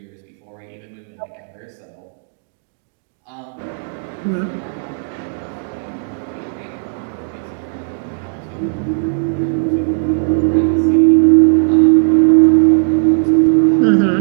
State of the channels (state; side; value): silent; left; digital silence